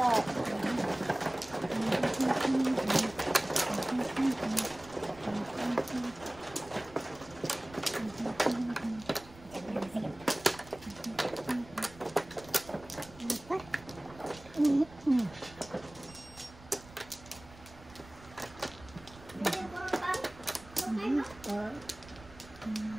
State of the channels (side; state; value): right; noise; rumble, 20 dB below the sound